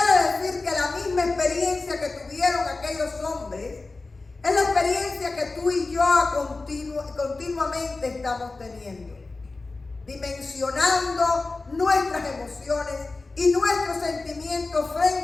decir que la misma experiencia que tuvieron aquellos hombres es la experiencia que tú y yo continuamente estamos teniendo, dimensionando nuestras emociones y nuestros sentimientos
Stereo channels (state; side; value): quieter; right; 3.6 dB